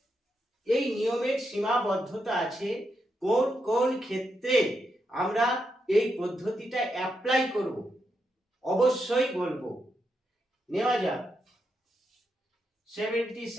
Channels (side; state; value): both; normal; correlation 0.83